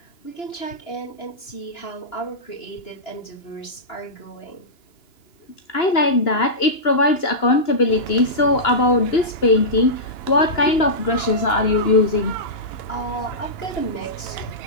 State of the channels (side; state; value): right; late; 2.9 ms